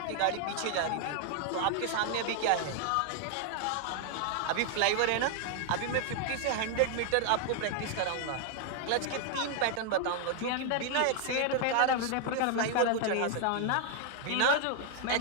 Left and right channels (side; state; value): both; different; correlation 0.00